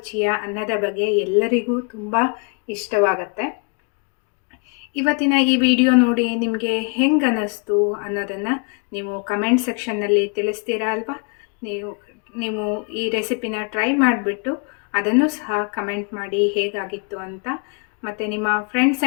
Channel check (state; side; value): quieter; right; 36.1 dB